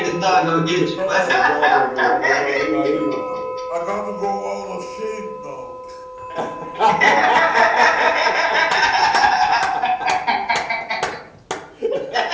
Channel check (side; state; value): both; identical; correlation 1.00